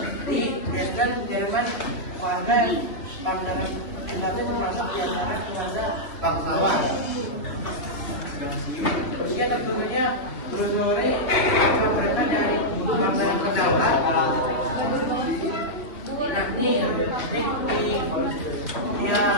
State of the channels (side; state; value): right; late; 3.1 ms